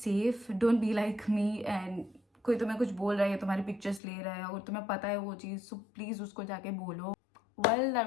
don't be like me and कोई तुम्हें कुछ बोल रहा है या तुम्हारी पिक्चर्स ले रहा है और तुम्हें पता है वो चीज़, सो प्लीज़ उसको जाके बोलो। Well, that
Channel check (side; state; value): right; drops out; at 4.0 s